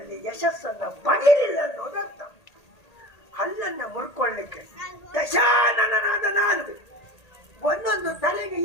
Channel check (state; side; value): late; right; 1.8 ms